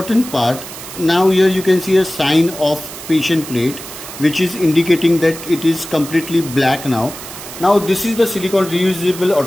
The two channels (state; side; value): noise; right; hiss, 12 dB below the sound